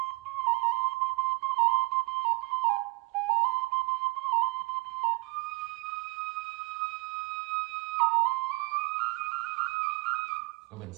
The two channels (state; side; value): quieter; left; 27.3 dB